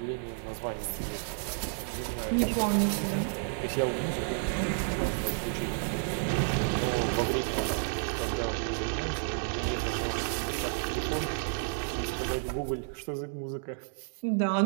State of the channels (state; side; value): silent; left; digital silence